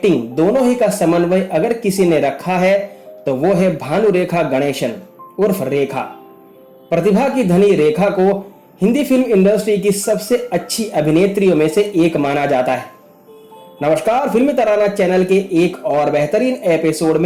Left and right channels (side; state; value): both; identical; correlation 1.00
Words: दोनों ही का समन्वय अगर किसी ने रखा है तो वो है भानुरेखा गणेशन उर्फ रेखा। प्रतिभा की धनी रेखा को हिंदी फिल्म इंडस्ट्री की सबसे अच्छी अभिनेत्रियों में से एक माना जाता है। नमस्कार, फिल्मी तराना चैनल के एक और बेहतरीन एपिसोड